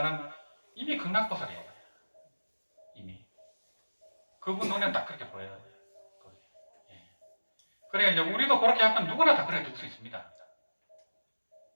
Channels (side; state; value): both; inverted; correlation -1.00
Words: 이미 극락보살이에요. 이미. 그분 눈에는 딱 그렇게 보여요. 예. 그러니까 이제 우리도 그렇게 하면 누구나 다 그렇게 될 수 있습니다.